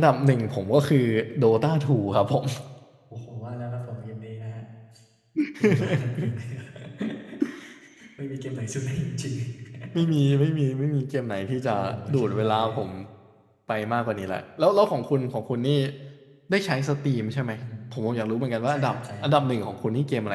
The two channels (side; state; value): both; identical; correlation 1.00